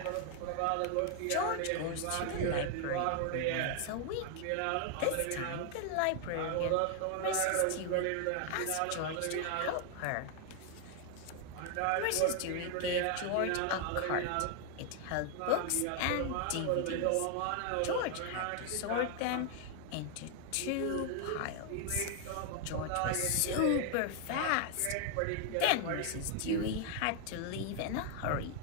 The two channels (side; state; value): both; different; correlation 0.00